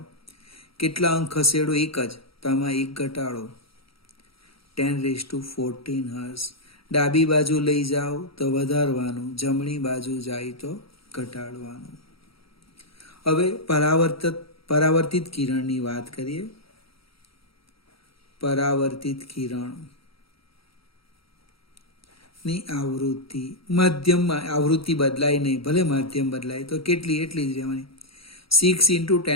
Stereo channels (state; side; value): late; right; 0.75 ms